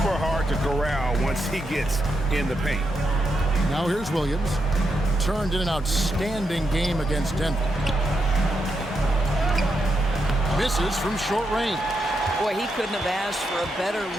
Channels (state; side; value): normal; both; correlation 0.83